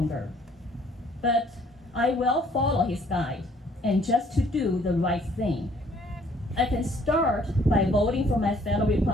But I will follow His guide and just to do the right thing. I can start by voting for my fellow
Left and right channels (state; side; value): normal; both; correlation 0.61